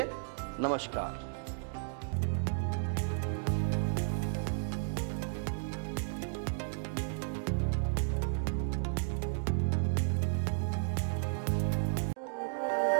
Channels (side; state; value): left; silent; digital silence